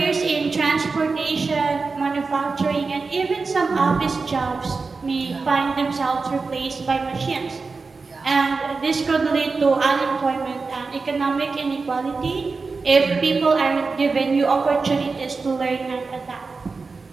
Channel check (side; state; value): left; quieter; 4.3 dB